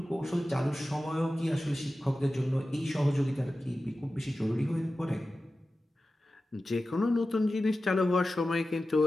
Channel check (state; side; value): normal; both; correlation 0.94